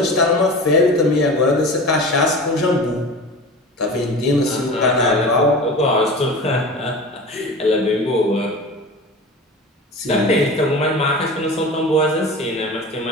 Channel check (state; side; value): normal; both; correlation 0.34